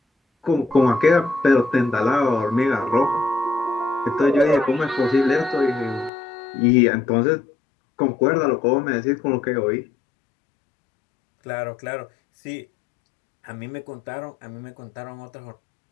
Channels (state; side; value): drops out; right; at 6.1 s